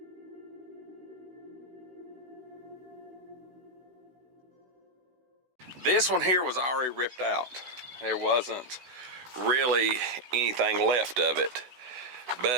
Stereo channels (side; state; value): left; late; 16 ms